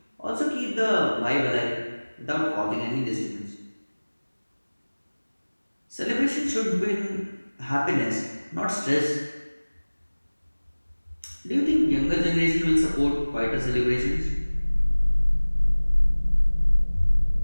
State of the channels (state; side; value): inverted; both; correlation -1.00